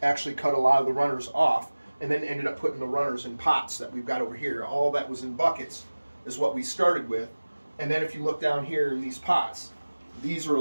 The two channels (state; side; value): inverted; both; correlation -1.00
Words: actually cut a lot of the runners off and then ended up putting the runners in pots that we've got over here. All that was in buckets is what we started with. And then if you look down here in these pots, these are